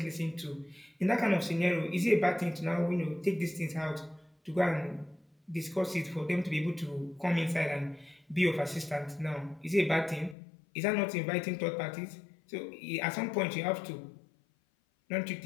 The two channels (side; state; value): right; drops out; at 10.4 s